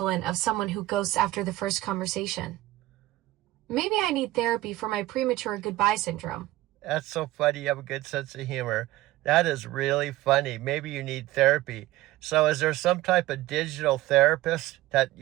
of someone who ghosts after the first conversation. Maybe I need therapy for my premature goodbye syndrome. That's so funny. You have a good sense of humor. That is really funny. Maybe you need therapy. So is there some type of digital therapist that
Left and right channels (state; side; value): quieter; left; 17.0 dB